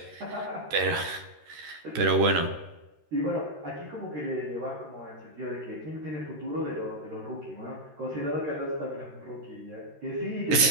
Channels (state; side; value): late; left; 13 ms